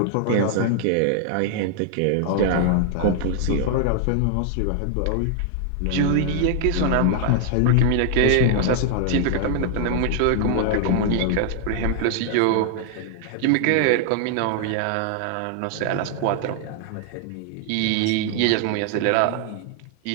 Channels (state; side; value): different; both; correlation 0.00